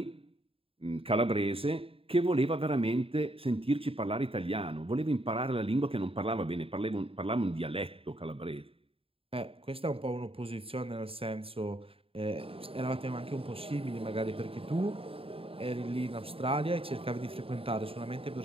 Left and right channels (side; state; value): left; late; 0.27 ms